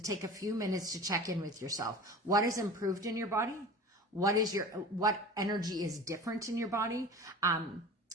take a few minutes to check in with yourself. What has improved in your body? What energy is different in your body?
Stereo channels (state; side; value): normal; both; correlation 0.36